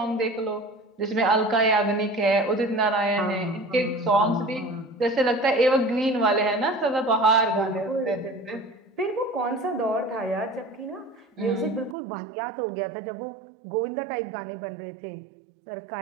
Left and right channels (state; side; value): drops out; left; at 12.0 s